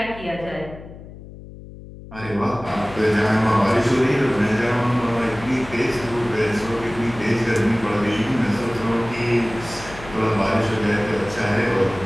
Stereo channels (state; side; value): noise; left; hum, 16 dB below the sound